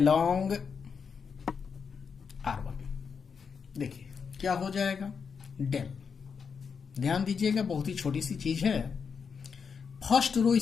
R1। देखिए क्या हो जाएगा, डेल, ध्यान दीजिएगा बहुत ही छोटी सी चीज है। फर्स्ट रो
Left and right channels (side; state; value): right; quieter; 6.1 dB